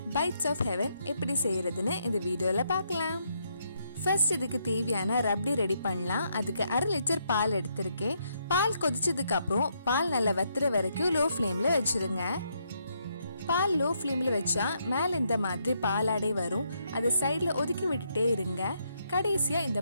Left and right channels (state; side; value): inverted; both; correlation -0.76